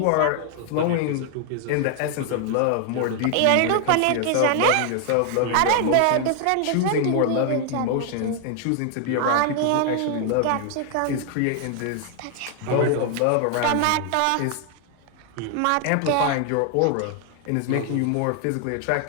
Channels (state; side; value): different; both; correlation 0.00